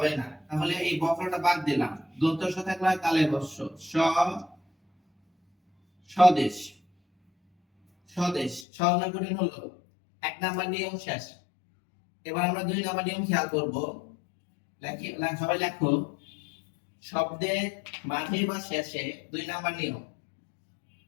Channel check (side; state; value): right; drops out; at 8.7 s